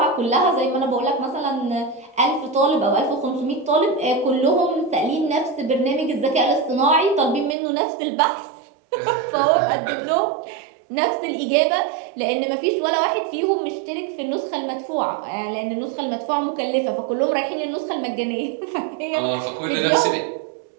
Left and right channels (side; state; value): left; drops out; at 7.6 s